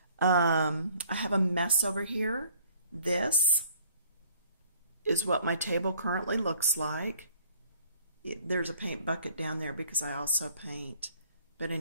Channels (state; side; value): inverted; both; correlation -0.58